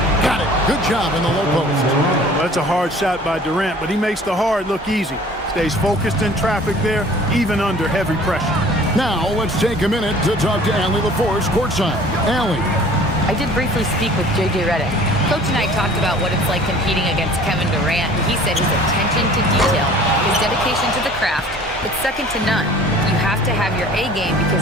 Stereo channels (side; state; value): both; normal; correlation 0.49